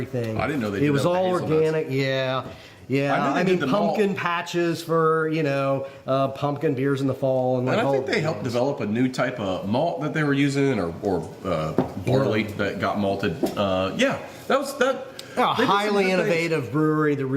I didn't know they it did was that with all hazelnuts. organic. Yeah. I mean, pumpkin patches for, pumpkin beers in the fall. And I all think they helped develop a new type of malt that they were using, or barley that got malted. That was that. A they did some highly good things. innovative brewery that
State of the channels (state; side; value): identical; both; correlation 1.00